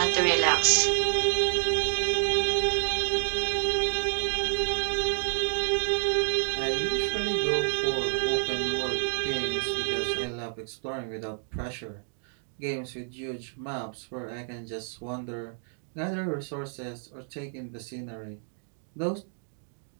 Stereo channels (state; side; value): silent; left; 59 dB below the other